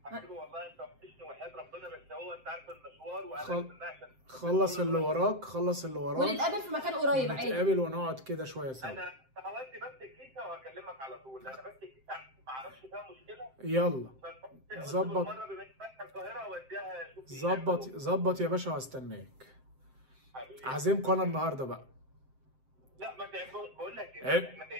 حبيبي والله انت وحشني وحياه ربنا، بس هو انت عارف المشوار وانا عشان خلص اللي وراك، ونتقابل في مكان قريب عادي. نتقابل ونقعد كده شويه سوا. انا هودي بس الكيسه وهكلمك على طول. انا بس الكيسه ما اعرفش فيها مشكله. يلا ظبط. ظبط يا باشا وهستناك. عازمكم انا النهارده بقى. لا ما بقول لك احنا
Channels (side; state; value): left; late; 7.7 ms